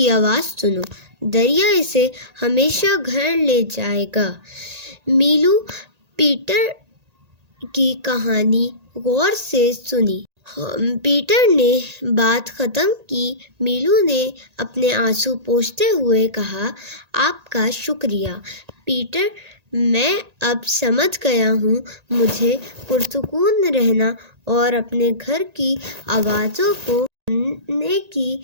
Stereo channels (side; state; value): left; late; 1.8 ms